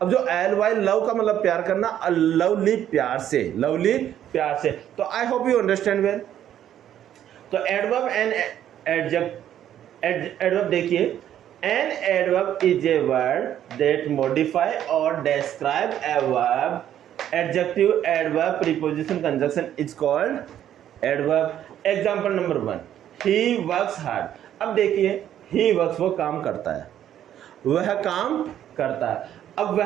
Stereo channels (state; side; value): quieter; left; 10.9 dB